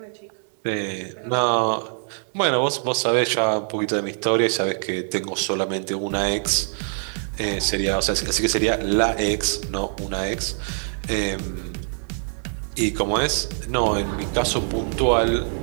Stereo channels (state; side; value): silent; left; digital silence